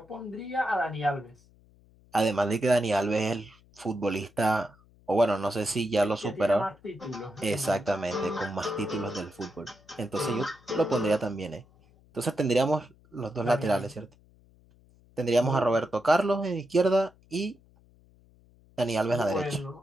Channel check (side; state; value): left; noise; hum, 29 dB below the sound